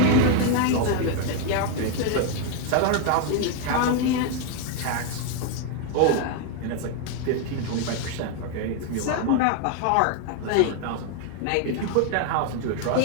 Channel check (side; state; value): both; different; correlation 0.01